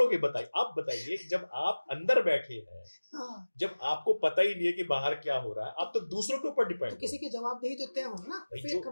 बताइए? आप बताइए, जब आप अंदर बैठे हैं, हाँ। जब आपको पता ही नहीं है कि बाहर क्या हो रहा है, आप तो दूसरों के ऊपर डिपेंड तो हो। किसी की जवाबदेही तो तय होगी ना भाई फेक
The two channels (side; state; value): both; inverted; correlation -1.00